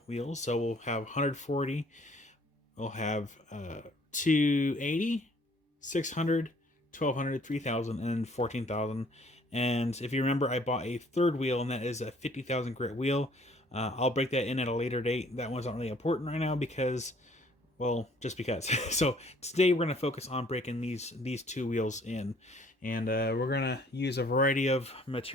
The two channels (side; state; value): both; normal; correlation 0.59